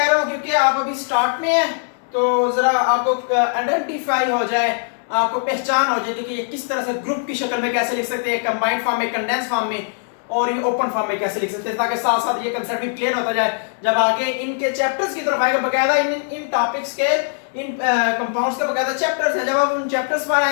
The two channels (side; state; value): right; silent; 65 dB below the other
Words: रहा हूं क्योंकि आप अभी स्टार्ट में हैं, तो जरा आपको आइडेंटिफाई हो जाए, आपको पहचान हो जाए कि ये किस तरह से ग्रुप की शक्ल में कैसे लिख सकते हैं, कंबाइंड फॉर्म में, कंडेंस फॉर्म में, और ये ओपन फॉर्म में कैसे लिख सकते हैं, ताकि साथ साथ ये कंसेप्ट भी क्लियर होता जाए। जब आगे इनके चैप्टर्स की तरफ आएगा, बकायदा इन टॉपिक्स के, इन कंपाउंड्स के बकायदा चैप्टर्स हैं, जब आप उन चैप्टर्स पर